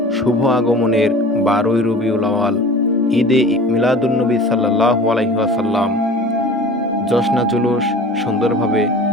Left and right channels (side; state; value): both; normal; correlation 0.40